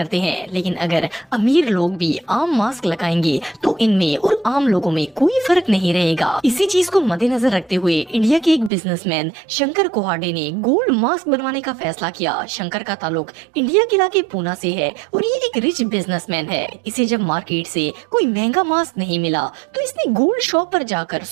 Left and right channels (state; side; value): drops out; left; at 8.7 s